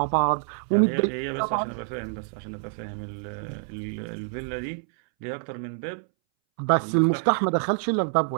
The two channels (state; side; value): silent; left; 61 dB below the other